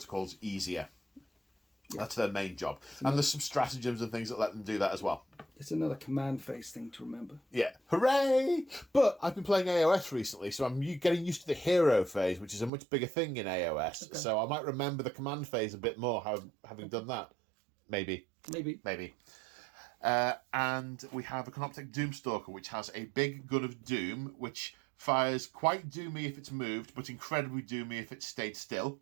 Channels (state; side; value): drops out; left; at 12.7 s